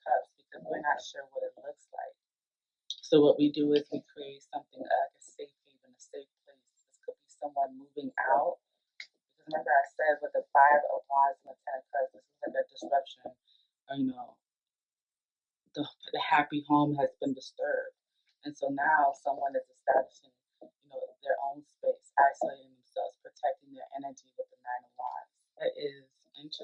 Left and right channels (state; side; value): identical; both; correlation 1.00